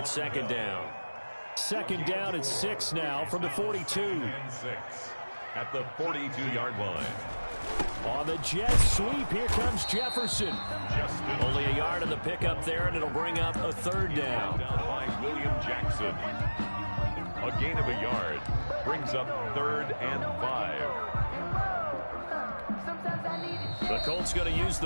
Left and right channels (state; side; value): inverted; both; correlation -1.00